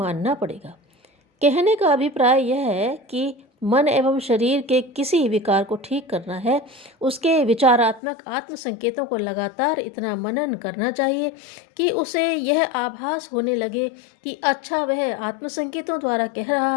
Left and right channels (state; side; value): drops out; right; at 8.0 s